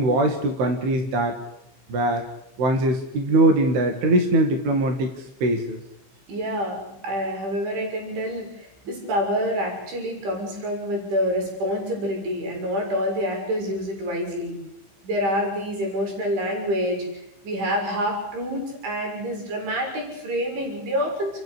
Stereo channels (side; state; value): left; late; 15 ms